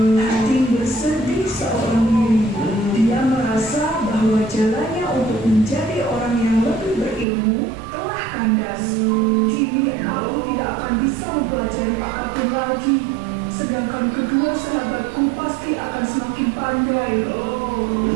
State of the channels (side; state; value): left; drops out; at 7.2 s